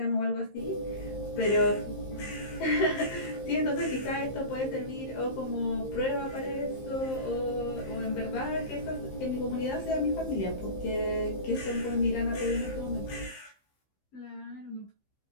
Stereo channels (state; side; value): late; right; 15 ms